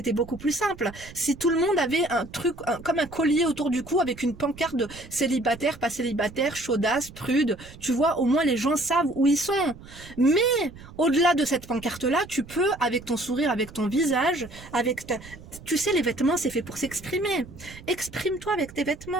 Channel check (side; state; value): right; noise; rumble, 18 dB below the sound